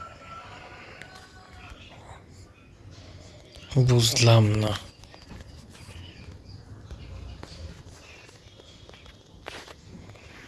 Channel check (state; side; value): identical; both; correlation 1.00